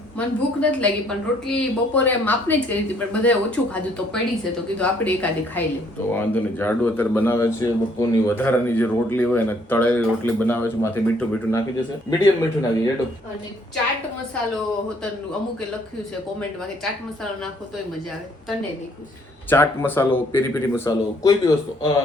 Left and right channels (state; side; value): normal; both; correlation 0.65